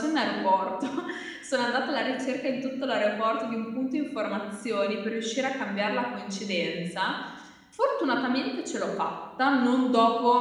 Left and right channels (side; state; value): both; identical; correlation 1.00